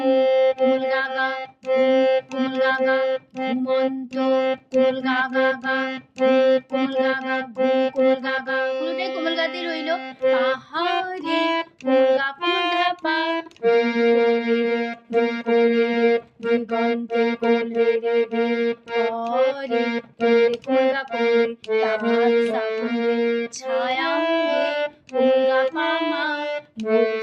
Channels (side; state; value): both; identical; correlation 1.00